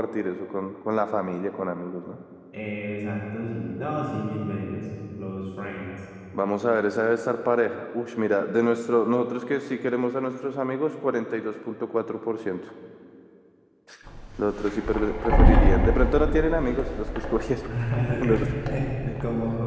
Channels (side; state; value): both; identical; correlation 1.00